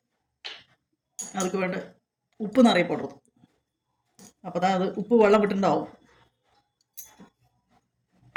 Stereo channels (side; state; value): both; identical; correlation 1.00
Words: அதுக்கு வேണ്ട உப்பு நிறைய போடுறது. அப்போ தான் அது உப்பு வெள்ளம் விட்டுண்டாகும்.